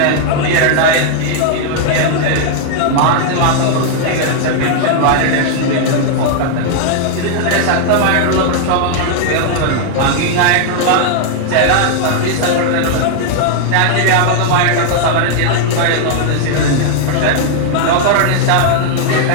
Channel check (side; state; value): both; different; correlation -0.01